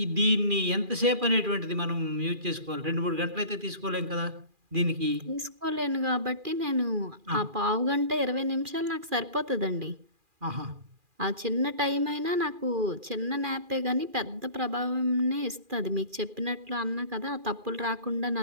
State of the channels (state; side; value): late; left; 2.4 ms